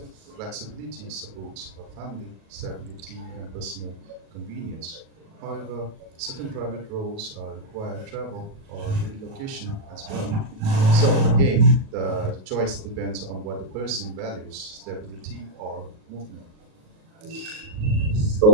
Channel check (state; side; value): late; left; 37 ms